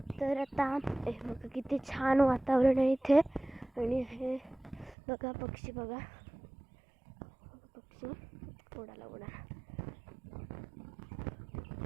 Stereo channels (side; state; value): left; drops out; at 5.0 s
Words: तर आता हे बघा किती छान वातावरण आहे इथे. आणि हे बघा पक्षी बघा उडाला.